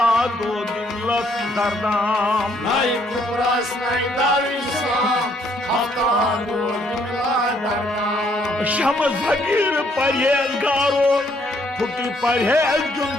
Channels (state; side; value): normal; both; correlation 0.68